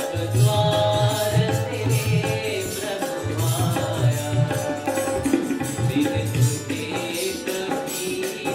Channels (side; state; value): both; identical; correlation 1.00